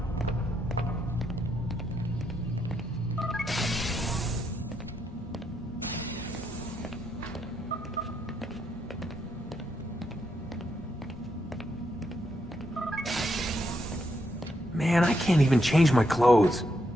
Man, I can't even change my clothes.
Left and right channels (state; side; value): normal; both; correlation 0.79